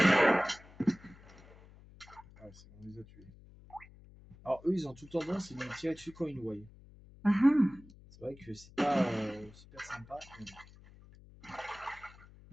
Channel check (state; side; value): noise; left; hum, 22 dB below the sound